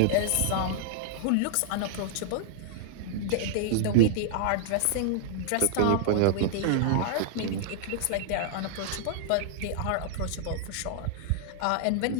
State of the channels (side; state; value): both; different; correlation -0.01